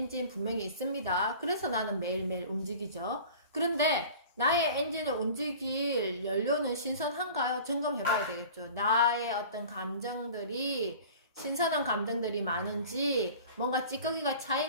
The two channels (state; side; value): inverted; both; correlation -0.42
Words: 분명히 있습니다. 그래서 나는 매일매일 움직이죠. 그런데 나의 엔진을 움직일 연료는 신선한가요? 점검해 봐야 되겠죠. 나의 어떤 감정들이 신선한 감정들이 많은지 뭔가 찌꺼기가